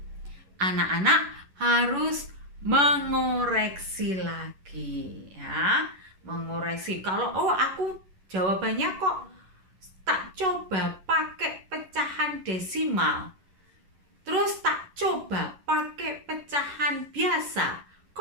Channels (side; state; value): left; late; 11 ms